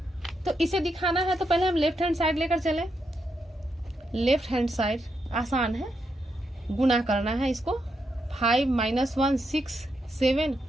तो इसे दिखाना है तो पहले हम लेफ्ट हैंड साइड लेकर चले। लेफ्ट हैंड साइड आसान है, गुना करना है इसको, 5 -1 6 7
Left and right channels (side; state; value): both; normal; correlation 0.82